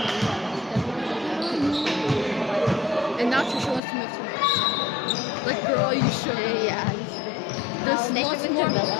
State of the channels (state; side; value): drops out; right; at 3.8 s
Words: And now Trisha wants to move to me. Like, girl, are you sure? Yeah. There's They lots live in more.